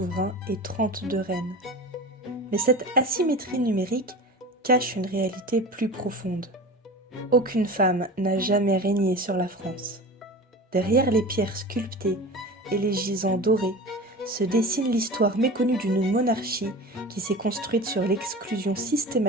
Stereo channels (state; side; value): normal; both; correlation 0.33